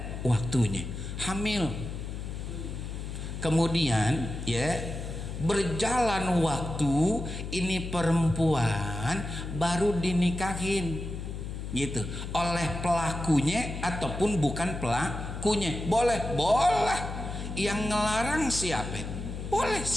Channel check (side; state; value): left; noise; hum, 6 dB below the sound